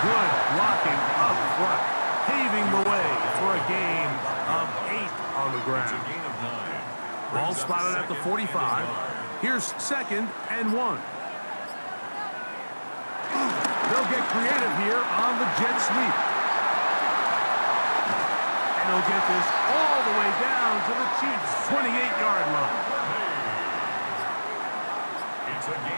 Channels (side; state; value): both; inverted; correlation -1.00